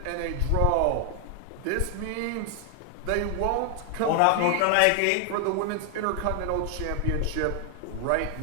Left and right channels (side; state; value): both; different; correlation 0.00